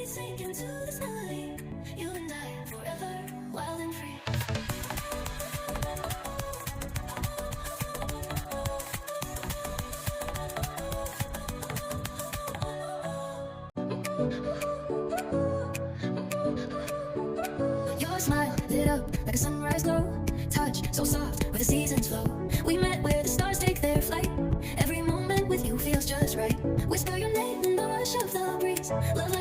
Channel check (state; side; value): identical; both; correlation 1.00